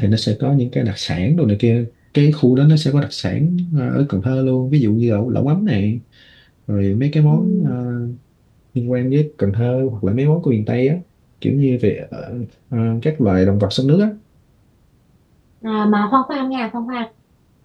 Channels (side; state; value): both; identical; correlation 1.00